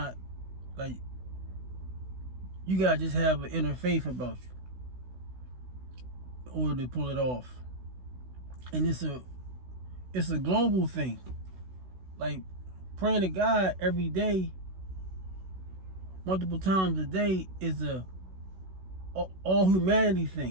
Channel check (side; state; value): left; late; 16 ms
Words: like, you gotta just have an inner faith about you in order to pull it off. And it's a global thing. Like praying to God every day, multiple times a day, is a all humanity